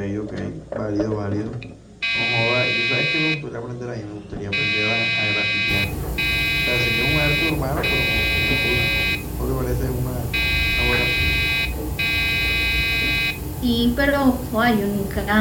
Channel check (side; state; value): both; identical; correlation 1.00